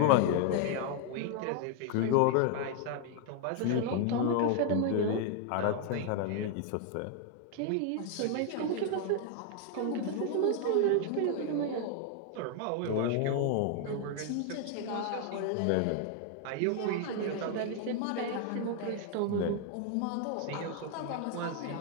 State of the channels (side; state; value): both; different; correlation 0.00